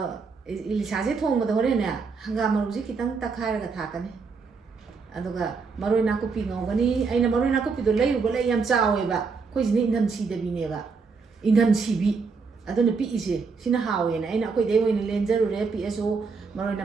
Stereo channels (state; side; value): quieter; left; 4.9 dB